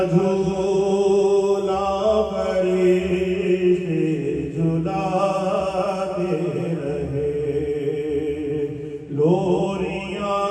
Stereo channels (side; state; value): both; identical; correlation 1.00